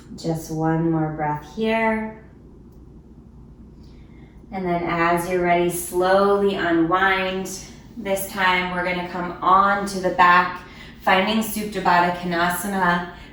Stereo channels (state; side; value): identical; both; correlation 1.00